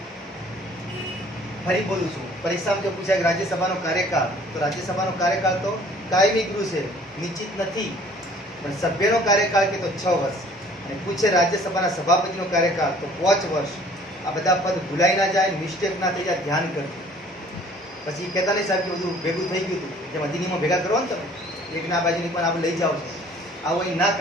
ફરી બોલું છું, પરીક્ષામાં જો પૂછાય કે રાજ્યસભાનો કાર્યકાળ, તો રાજ્યસભાનો કાર્યકાળ તો કાયમી ગૃહ છે, નિશ્ચિત નથી. પણ સભ્યનો કાર્યકાળ કે તો 6 વર્ષ, અને પૂછે રાજ્યસભાના સભાપતિનો કાર્યકાળ તો 5 વર્ષ. આ બધા પદ ભૂલાઈ ના જાય, મિસ્ટેક ના થઈ જાય, ધ્યાન કરજો. પછી કહેતા નહીં સાહેબ કે બધું ભેગું થઈ ગયું હતું, જેમ અધિનિયમો ભેગા કરો ને તમે, એકના બાજુની પણ આપણે લઈ જાઓ છો, આવું અહીં ના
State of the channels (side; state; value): both; normal; correlation 0.54